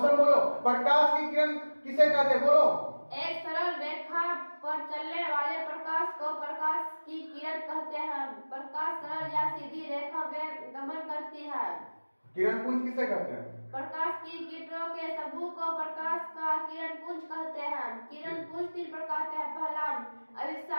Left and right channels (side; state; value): both; inverted; correlation -1.00